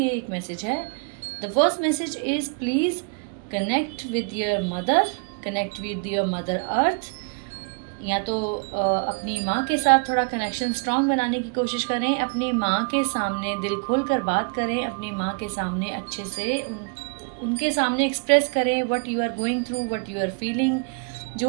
एक मैसेज है. The first message is please connect with your mother, connect with your mother earth. या तो अपनी माँ के साथ थोड़ा कनेक्शन स्ट्रॉन्ग बनाने की कोशिश करें, अपनी माँ के सामने दिल खोल कर बात करें, अपनी माँ के सामने अच्छे से उनके सामने एक्सप्रेस करें what you are going through, what you are feeling.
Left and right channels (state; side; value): quieter; left; 39.2 dB